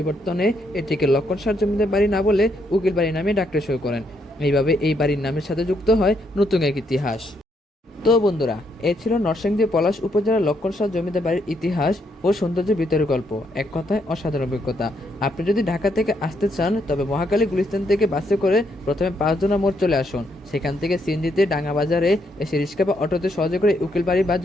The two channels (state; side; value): normal; both; correlation 0.75